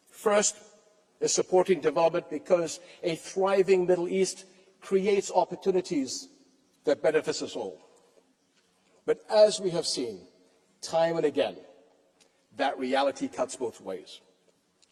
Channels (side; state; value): both; identical; correlation 1.00